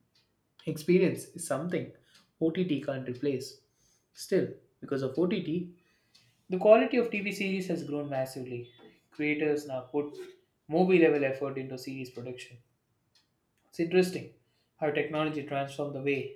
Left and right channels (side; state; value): both; identical; correlation 1.00